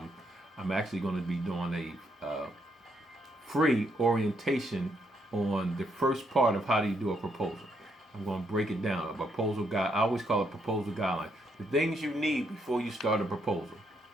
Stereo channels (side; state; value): both; normal; correlation 0.75